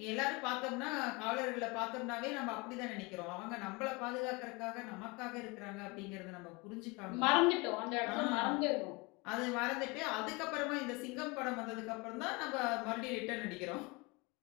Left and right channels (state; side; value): quieter; right; 26.4 dB